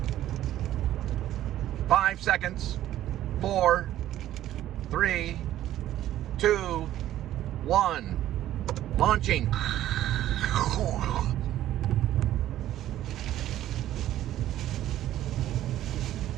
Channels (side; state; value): left; quieter; 13.1 dB